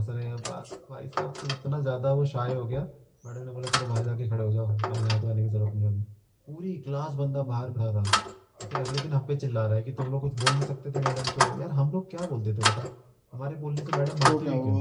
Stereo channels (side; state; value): both; identical; correlation 1.00